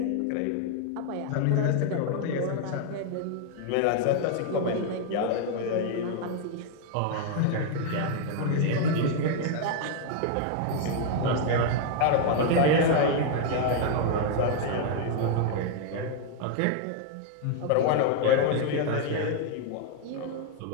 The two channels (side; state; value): both; different; correlation 0.00